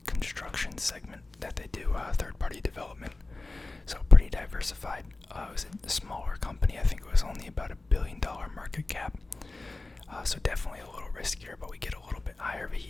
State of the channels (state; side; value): quieter; right; 3.2 dB